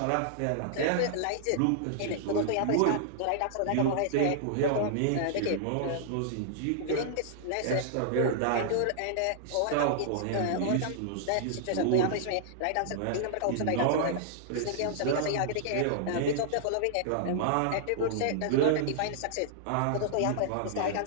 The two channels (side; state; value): both; different; correlation -0.01